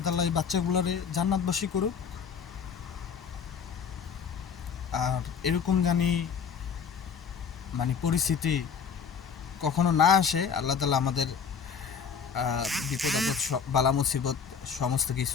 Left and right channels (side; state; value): right; quieter; 6.5 dB